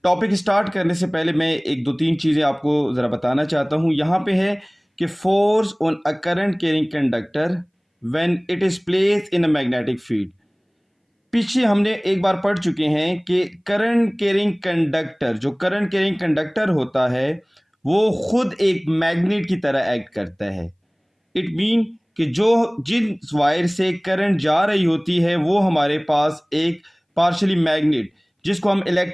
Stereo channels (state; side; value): identical; both; correlation 1.00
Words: topic start करने से पहले मैं एक दो तीन चीज़ें आपको ज़रा बताना चाहता हूँ। यहाँ पे है कि force on a current carrying conductor when it is placed in a magnetic field. पीछे हमने एक बार पढ़ चुके हैं कि करंट कैरिंग कंडक्टर, जो करंट कैरिंग कंडक्टर होता है वो खुद एक मैग्नेट की तरह एक्ट करता है। इट मीन कि जो जिन वायर से करंट जा रही होती है वो हमारे पास एक पार्शली मैग्नेट, जिसको हम